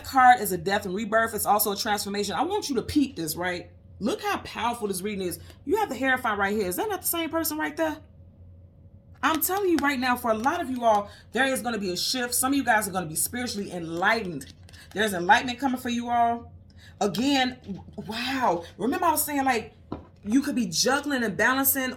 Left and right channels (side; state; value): both; identical; correlation 1.00